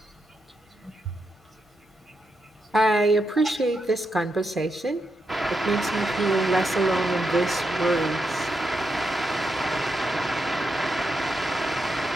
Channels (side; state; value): both; normal; correlation 0.84